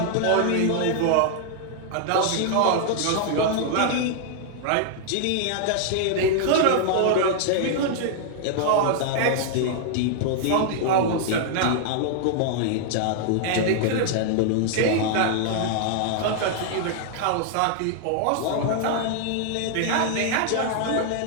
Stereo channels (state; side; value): different; both; correlation -0.01